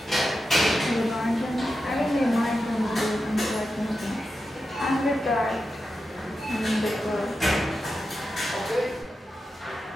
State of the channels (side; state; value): both; normal; correlation 0.90